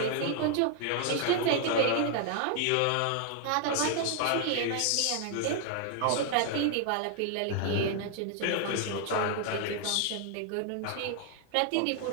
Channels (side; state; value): both; different; correlation 0.00